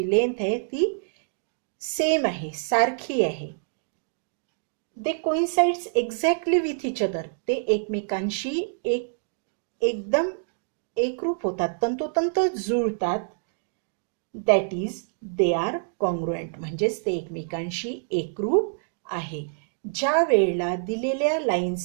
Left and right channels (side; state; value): left; silent; digital silence